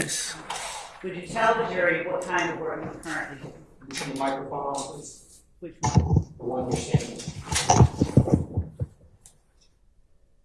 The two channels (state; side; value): identical; both; correlation 1.00